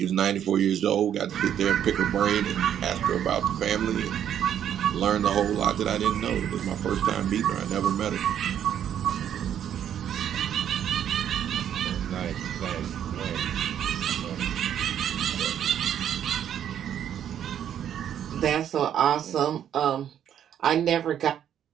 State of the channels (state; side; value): quieter; left; 9.8 dB